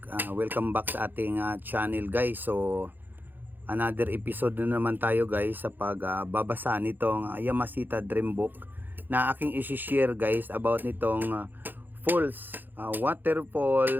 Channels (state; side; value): late; left; 0.089 ms